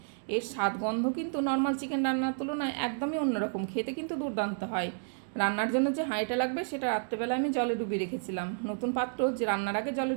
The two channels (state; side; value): silent; left; digital silence